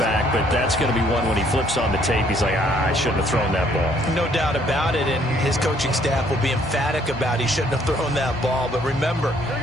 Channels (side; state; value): both; normal; correlation 0.64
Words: but that's going to be one when he flips on the tape. He's like, I shouldn't have thrown that ball. No doubt about it, and his coaching staff will be emphatic about he shouldn't have thrown that ball. But remember,